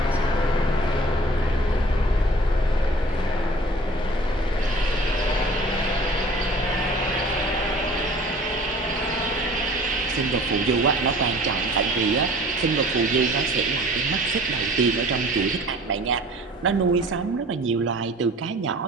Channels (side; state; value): both; normal; correlation 0.48